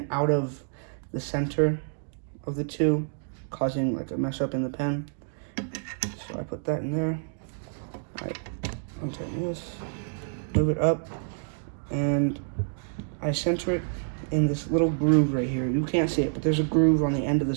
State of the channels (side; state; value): left; silent; digital silence